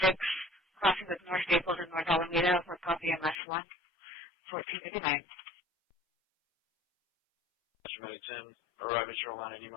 crossing with North Staples and North Alameda for copy MS1, 1459. Medic 10, arriving shoreline any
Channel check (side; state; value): right; drops out; at 3.4 s